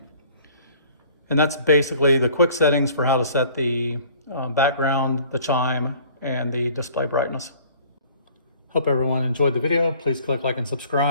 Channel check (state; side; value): inverted; both; correlation -0.52